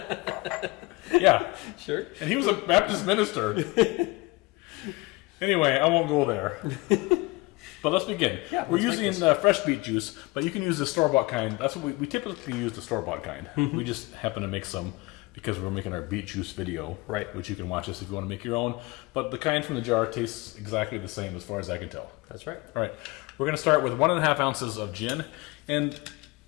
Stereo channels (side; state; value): right; quieter; 23.4 dB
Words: Yeah. Sure. And he was a Baptist minister. Anyway, I won't go there. But let's begin. Yeah, we're using fresh beet juice, but you can use the store-bought kind. That's what we typically use, the store-bought kind. We just happen to make some because we're making our beet juice video, right? Which you can watch us if you want to make your own. But the kind from the jar tastes exactly the same as far as I can tell. That's right. All right. We're going to start with 1.5 ounces of gin, and